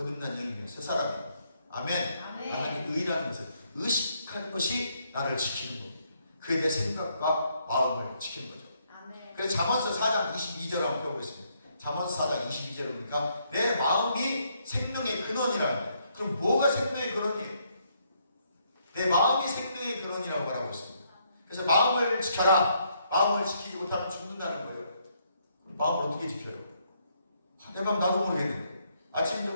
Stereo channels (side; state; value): both; inverted; correlation -0.73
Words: 영이며 새 사람이다. 아멘. 나는 의라는 것을 의식하는 것이 나를 지키는 겁니다. 그에 대해 생각과 마음을 지키는 거죠. 그래서 잠언서 4장 22절을 한번 펴보겠습니다. 잠언서 4장 22절을 보니까 내 마음이 생명의 근원이라는 거예요. 그럼 뭐가 생명의 근원이에요? 내 마음이 생명의 근원이라고 말하고 있습니다. 그래서 마음을 지켜라. 마음을 지키지 못하면 죽는다는 거예요. 그럼 마음을 어떻게 지켜요? 내 맘 나도 모르겠는데 아침,